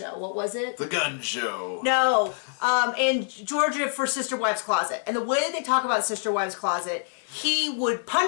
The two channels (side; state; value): right; silent; digital silence